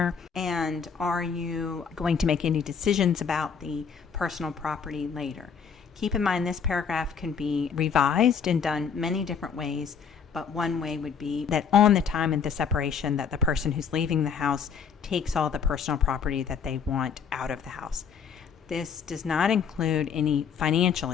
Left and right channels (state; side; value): quieter; right; 6.7 dB